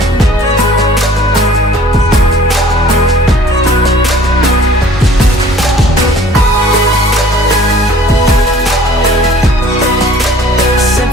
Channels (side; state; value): both; normal; correlation 0.52